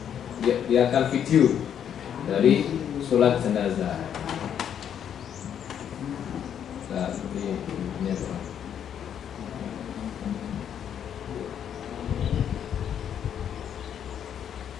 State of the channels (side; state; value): right; quieter; 9.0 dB